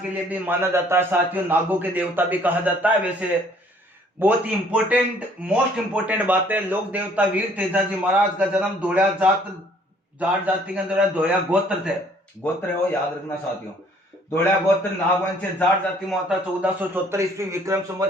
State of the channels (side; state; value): both; normal; correlation 0.59